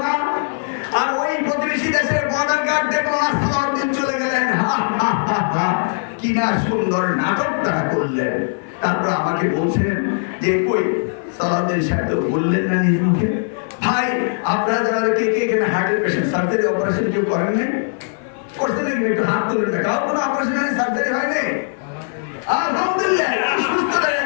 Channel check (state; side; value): silent; right; 56 dB below the other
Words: না, আর ওই প্রতিবেশী দেশের বর্ডার গার্ড দেখলো না, সালাউদ্দিন চলে গেলেন। কি না সুন্দর নাটক তারা করলেন। তারপর আমাকে বলছেন যে কই সালাউদ্দিন সাহেব তো বললেন না নিজ মুখে। ভাই আপনারা যারা কে কে এখানে হার্টের পেশেন্ট, সার্জারি অপারেশন কেউ করেন নাই? করছে নাকি? একটু হাত তুলে না। কারো কোনো অপারেশন হয়নি, সার্জারি হয়নি? আলহামদুলিল্লাহ, সুস্থ দাঁড়িয়ে